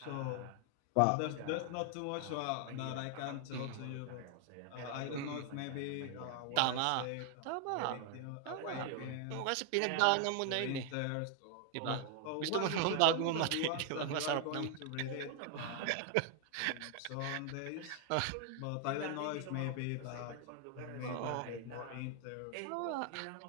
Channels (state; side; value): different; both; correlation 0.00